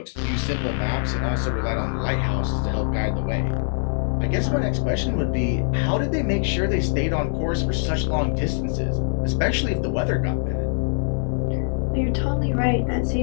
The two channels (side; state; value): right; silent; 63 dB below the other